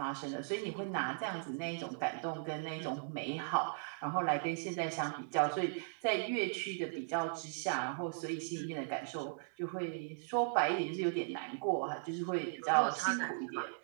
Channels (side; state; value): left; silent; digital silence